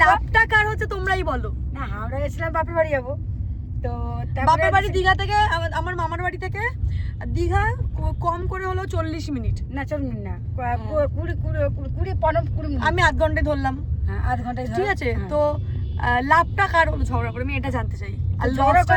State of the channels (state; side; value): identical; both; correlation 1.00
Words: লাভটা কার হচ্ছে তোমরাই বলো। না হাওড়া গেছিলাম বাপের বাড়ি যাবো, তো বাপের বাড়ি দীঘা থেকে আমার মামার বাড়ি থেকে দীঘা কম করে হলো 40 মিনিট, না 40 মিনিট না, 20 মিনিট, আমি আধ ঘন্টায় ধরলাম। হ্যাঁ আধ ঘন্টায় ঠিক আছে। তো লাভটা কার হলো ঝগড়া করে, আমি এটা জানতে চাই। আর ঝগড়া